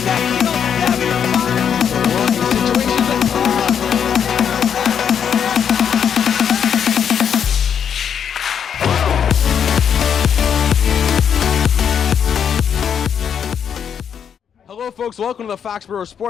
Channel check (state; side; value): quieter; right; 7.9 dB